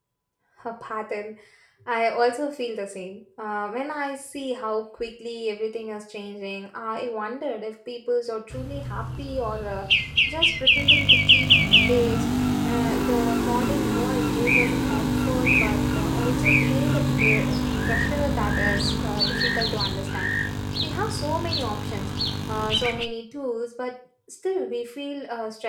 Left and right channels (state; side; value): identical; both; correlation 1.00